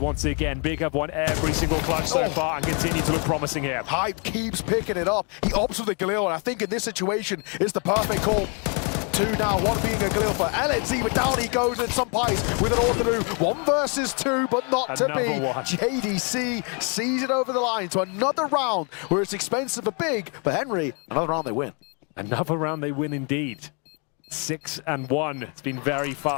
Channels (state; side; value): quieter; right; 36.2 dB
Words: again. Big have won every single clutch so far and continue to look promising here. Hype keeps picking it up. He opts for the Galil, and I think in this situation, it's the perfect call. 2 now, 1 being a Galil for LNZ, but down he goes, and some Pies with an Orthodox. 1 versus 2, but not to be. JDC sees it over the line to another round where it's expensive but big. But Henry, another round they win. Another round they win indeed. 6-1. It's been very